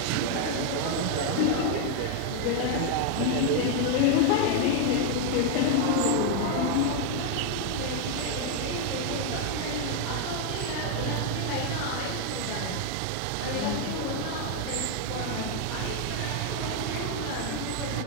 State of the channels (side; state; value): both; different; correlation 0.00